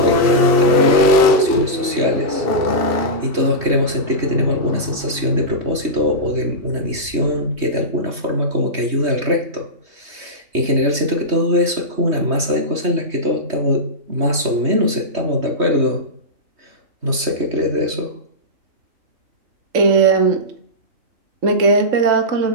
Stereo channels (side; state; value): left; late; 3.2 ms